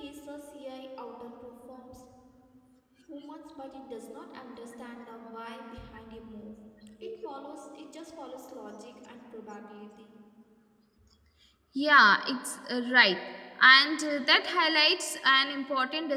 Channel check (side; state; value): both; identical; correlation 1.00